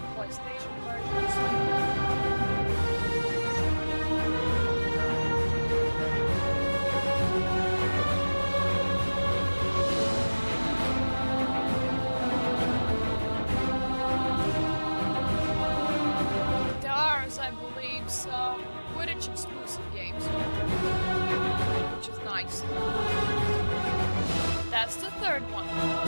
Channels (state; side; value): inverted; both; correlation -1.00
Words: PlayStation versions. There are, I believe, some Quidditch exclusive games, which is nice. That's the third one.